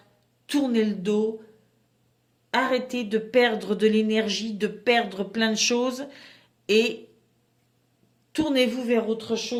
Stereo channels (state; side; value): identical; both; correlation 1.00